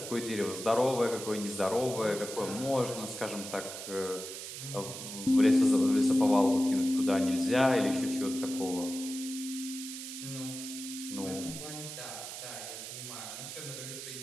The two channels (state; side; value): noise; right; hiss, 9 dB below the sound